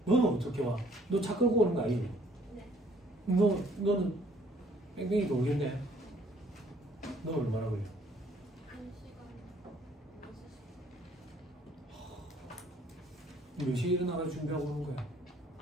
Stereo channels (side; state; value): both; normal; correlation 0.61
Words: 너는 어떻게 와? 너 차 끌고 오는 거 아니지? 네. 너는 뺑뺑이 돌겠네. 너 얼마나 걸려? 1시간 6시. 몇 시에 일어나서 준비하고 오는 거야?